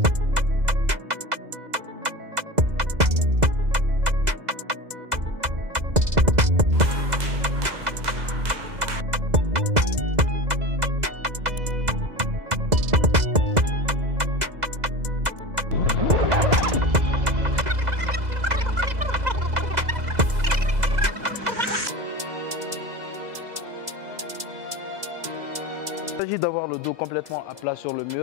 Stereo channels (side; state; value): left; late; 2.0 ms